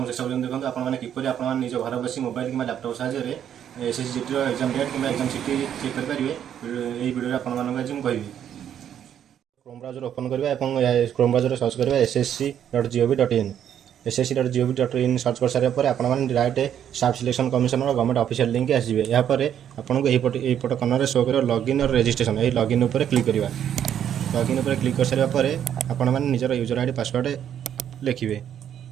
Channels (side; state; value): left; quieter; 9.6 dB